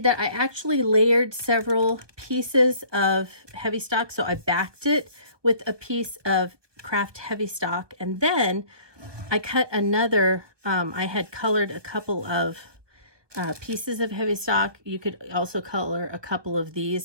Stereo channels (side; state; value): left; late; 1.2 ms